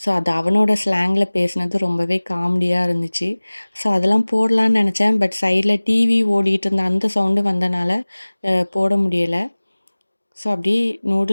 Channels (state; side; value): inverted; both; correlation -1.00